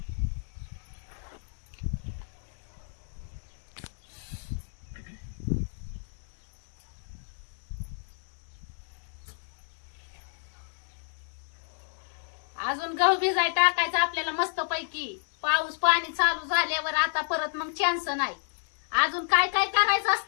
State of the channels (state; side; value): silent; right; digital silence